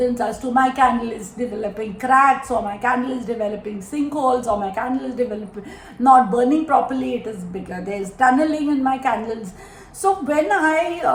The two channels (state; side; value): identical; both; correlation 1.00